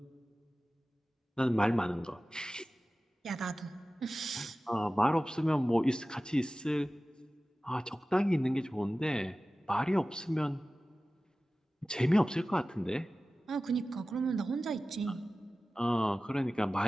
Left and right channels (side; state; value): both; normal; correlation 0.96